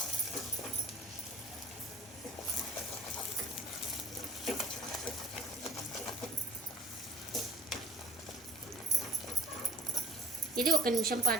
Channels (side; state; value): both; normal; correlation 0.47